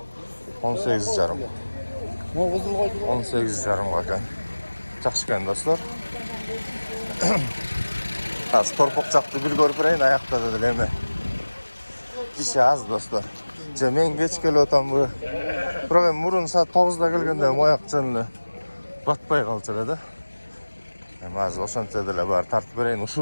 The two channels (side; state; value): both; inverted; correlation -1.00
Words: 18,5. Могу кызыл койду. 18,5 экен. Жакшы экен достор. Азыр торпок жакты бир көрүп берейин, аякта деле эме. Киши аз достор. Же мен кеч келип атамбы. Бирок эми мурун саат 9да келгенде мояк жөн эле батпай калчу эле да. Эми азыр ошончо деле бар тартып берейин,